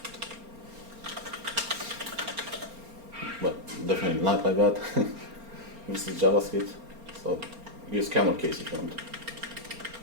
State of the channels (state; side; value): late; left; 4.3 ms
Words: But definitely not like that. This is JavaScript, so use camel case if you want.